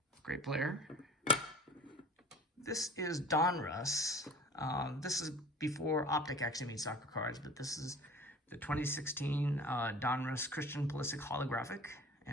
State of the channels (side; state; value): both; normal; correlation 0.42